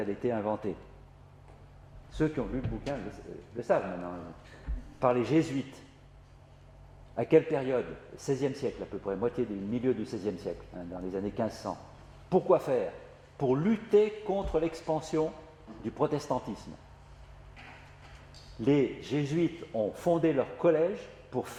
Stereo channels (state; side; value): identical; both; correlation 1.00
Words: été inventée? Ceux qui ont lu le bouquin le savent maintenant. Par les jésuites. À quelle période? 16e siècle à peu près, milieu du 16e siècle, hein, dans les années 1500. Pourquoi faire? Pour lutter contre l'expansion du protestantisme. Les jésuites ont fondé leur collège pour